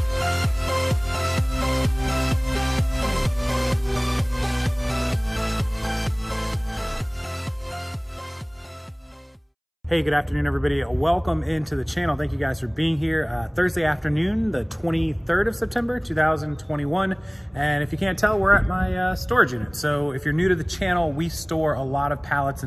Hey, good afternoon, everybody. Welcome into the channel. Thank you guys for being here. Thursday afternoon, the 23rd of September, 2021. And if you can't tell, we're at my storage unit. So if you're new to the channel, we store a lot of pallets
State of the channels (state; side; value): identical; both; correlation 1.00